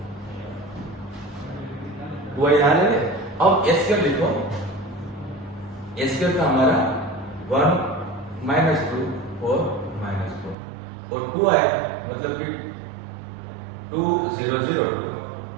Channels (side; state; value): left; drops out; at 10.6 s